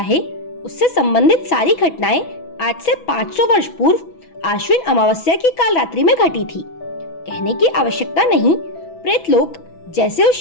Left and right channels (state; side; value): late; right; 6.1 ms